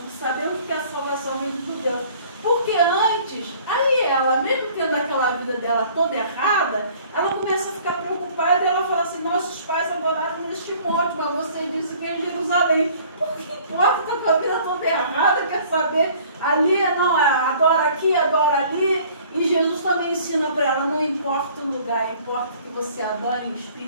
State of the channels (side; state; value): both; inverted; correlation -0.53